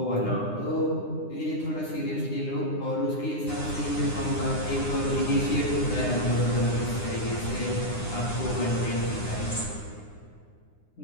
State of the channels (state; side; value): late; right; 9.8 ms